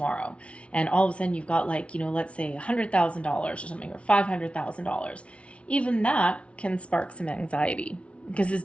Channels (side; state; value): right; late; 0.061 ms